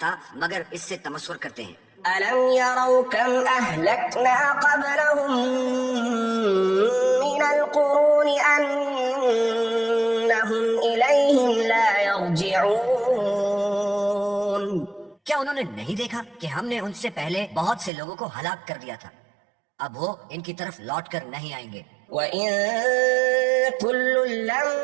مگر اس سے تمسخر کرتے ہیں. ألم يروا كم أهلكنا قبلهم من القرون أنهم إليهم لا يرجعون. کیا انہوں نے نہیں دیکھا کہ ہم نے ان سے پہلے بہت سے لوگوں کو ہلاک کر دیا تھا، اب وہ ان کی طرف لوٹ کر نہیں آئیں گے. وَإِن كُلٌّ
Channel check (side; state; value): left; drops out; at 17.9 s